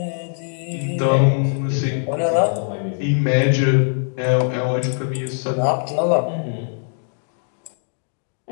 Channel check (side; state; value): right; silent; digital silence